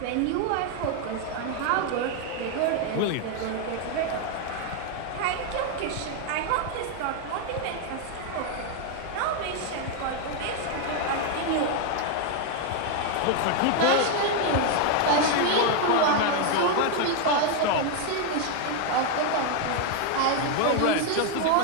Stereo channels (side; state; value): both; different; correlation 0.01